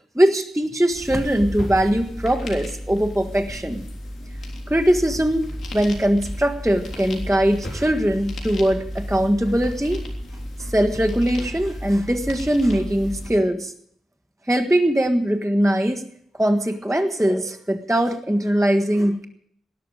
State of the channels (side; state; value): both; normal; correlation 0.94